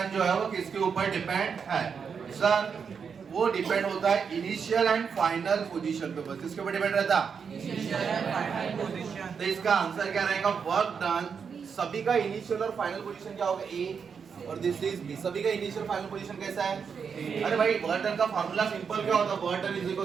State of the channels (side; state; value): left; quieter; 6.3 dB